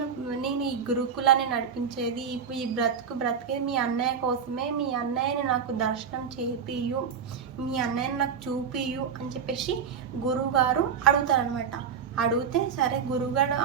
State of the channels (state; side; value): quieter; left; 6.9 dB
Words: ఈ గురుకులాన్ని నడిపించేది, ఇప్పుడు ఈ బ్రతికేది మీ అన్నయ్య కోసమే, మీ అన్నయ్యని నాకు దర్శనం చేపియు, మీ అన్నయ్యని నాకు చూపియు అని చెప్పేసి గురువుగారు అడుగుతారనమాట. అడిగితే సరే గురువుగారు